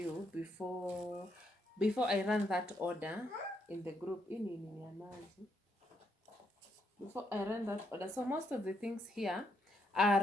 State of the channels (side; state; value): both; normal; correlation 0.76